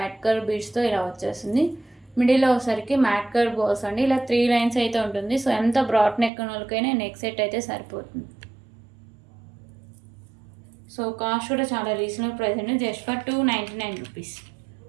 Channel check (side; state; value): left; drops out; at 6.3 s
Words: colour బీడ్స్తో ఇలా వచ్చేస్తుంది. మిడిల్లో వచ్చేసరికి మ్యాట్ కలర్ బాల్స్ అండి. ఇలా 3 లైన్స్ అయితే ఉంటుంది. సో ఎంత బ్రాడ్ నెక్ ఉన్న వాళ్ళకైనా నెక్ సెట్ అయితే సరిపోతుంది. సో కాస్ట్ కూడా చాలా రీజనబుల్ ప్రైస్ అండి. Just for 299 rupees.